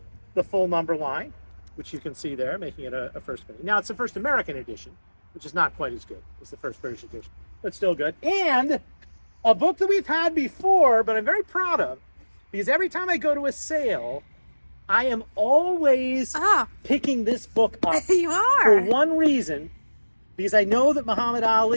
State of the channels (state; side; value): inverted; both; correlation -1.00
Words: number line, which you can see there, making it a first edition. Now it's the first American edition, which is not quite as good as the first British edition, but still good. And a book that we've had before, but I'm very proud of, because every time I go to a sale, I am always picking this book up You are. for one reason, because I know that Muhammad